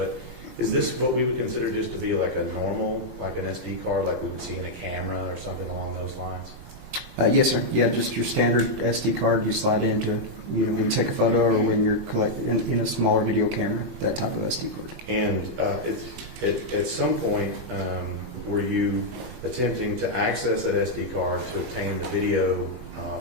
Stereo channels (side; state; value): both; normal; correlation -0.04